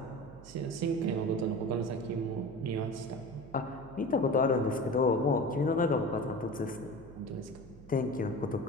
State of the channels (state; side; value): noise; right; hum, 19 dB below the sound